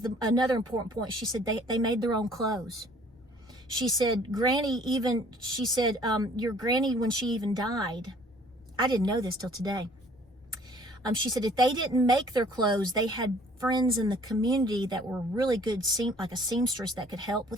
another important point. She said they made their own clothes. She said, your granny, when she even died, I didn't know this till today. She said if they didn't make their clothes, they had friends in the community that were really good, like a seamstress that could help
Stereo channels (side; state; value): both; normal; correlation 0.55